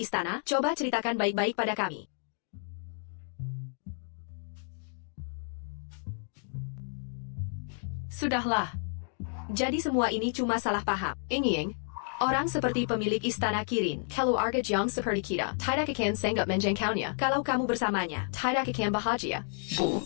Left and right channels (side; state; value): right; silent; 57 dB below the other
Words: Coba ceritakan baik-baik pada kami. Sudahlah. Jadi semua ini cuma salah paham. Yingying, orang seperti pemilik istana Kirin, keluarga Jiang seperti kita, tidak akan sanggup menjangkaunya. Kalau kamu bersamanya, tidak akan bahagia. Bu,